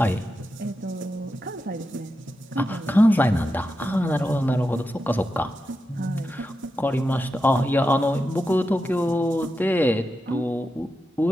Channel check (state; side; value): normal; both; correlation 0.89